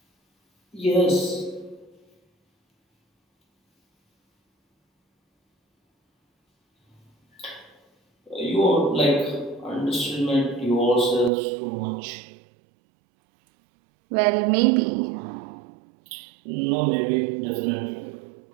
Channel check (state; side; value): drops out; left; at 11.3 s